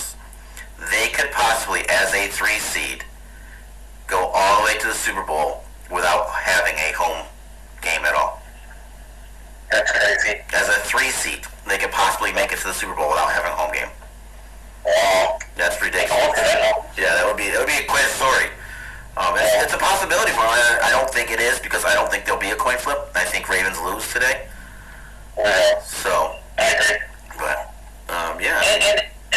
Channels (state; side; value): identical; both; correlation 1.00